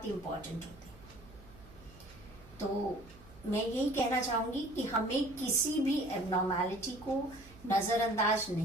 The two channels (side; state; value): right; noise; hum, 21 dB below the sound